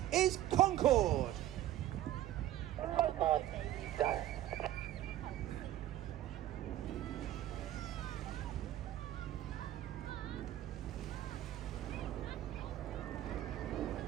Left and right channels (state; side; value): quieter; left; 13.4 dB